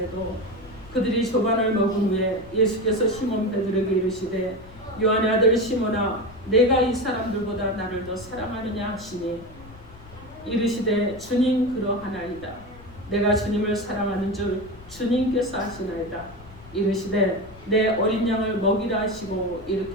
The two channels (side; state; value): left; noise; rumble, 20 dB below the sound